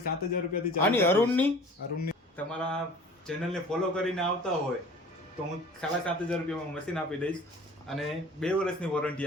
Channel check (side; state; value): both; normal; correlation 0.45